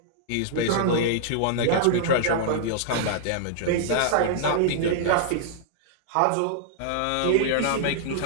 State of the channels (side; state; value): both; different; correlation -0.01